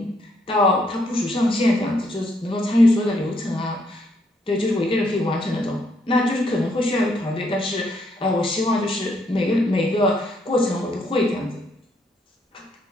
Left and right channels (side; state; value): both; normal; correlation 0.73